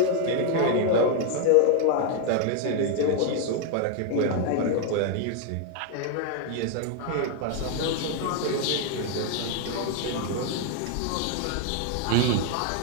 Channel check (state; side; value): different; both; correlation 0.00